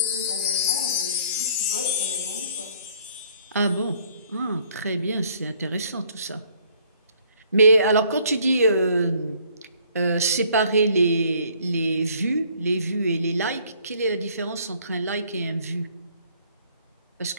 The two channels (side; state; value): both; inverted; correlation -0.61